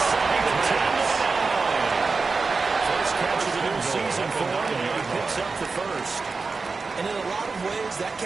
the 10. First catch of the new season for him, and he picks up the first. And in a lot of ways, that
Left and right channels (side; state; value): left; quieter; 4.3 dB